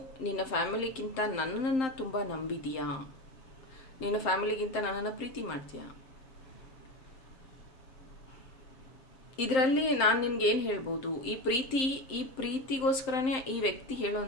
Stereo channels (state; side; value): late; right; 7.6 ms